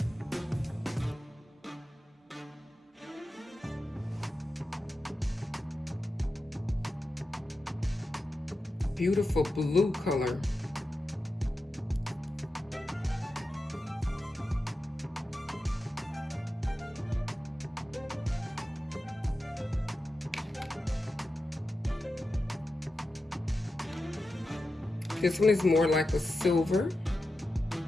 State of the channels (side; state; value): both; normal; correlation 0.91